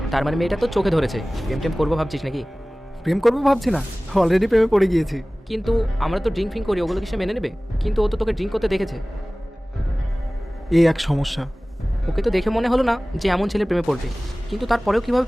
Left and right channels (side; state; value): both; normal; correlation 0.98